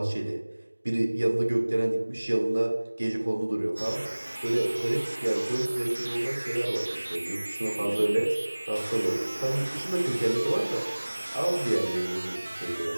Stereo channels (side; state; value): both; inverted; correlation -1.00